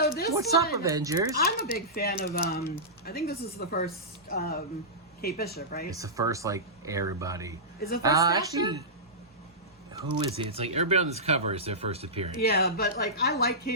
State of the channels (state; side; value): normal; both; correlation -0.16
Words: this What's one, up, Avengers? I'm a big fan of, I think this is the first Kate Bishop, right? It's the first, like, everybody. Is it first actually, who is it? It's like everybody on this cover is their first appearance. Yeah, but, like, I like